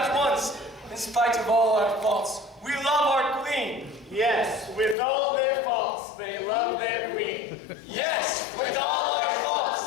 once. In spite of all our faults, we love our queen. Yes, with all their faults, they love their queen. Yes, with all our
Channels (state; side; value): drops out; right; at 5.0 s